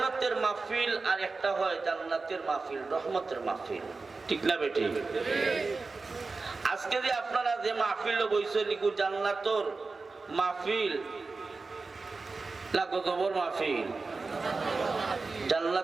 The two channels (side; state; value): left; quieter; 4.0 dB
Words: মাহফিল আর একটা হয় জান্নাতের মাহফিল, রহমতের মাহফিল, ঠিক না বেটি? আজকে যে আপনারা যে মাহফিল বইছেন নিকু জান্নাতর মাহফিল না গজবর মাহফিল?